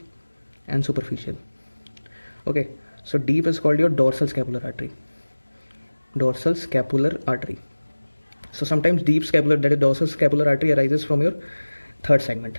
and superficial. Okay, so deep is called your dorsal scapular artery. Dorsal scapular artery. So sometimes deep scapular, that is dorsal scapular artery, arises from your third segment,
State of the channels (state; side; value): inverted; both; correlation -1.00